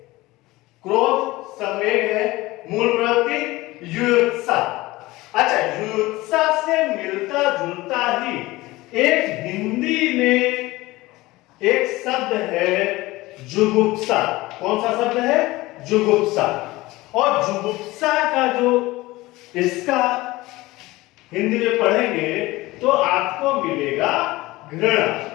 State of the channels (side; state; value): right; quieter; 19.6 dB